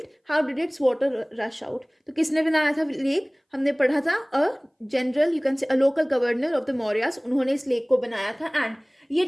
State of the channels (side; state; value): both; identical; correlation 1.00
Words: how did its water rush out. तो किसने बनाया था लेक, हमने पढ़ा था a general, you can say a local governor of the Mauryas, उन्होंने इस लेक को बनाया था. एंड ये